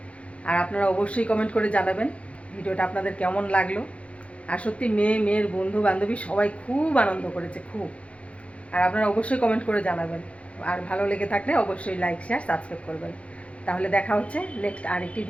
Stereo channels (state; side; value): late; right; 0.062 ms